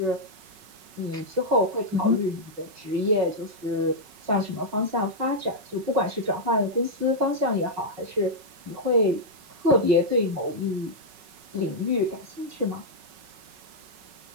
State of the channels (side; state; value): left; late; 5.4 ms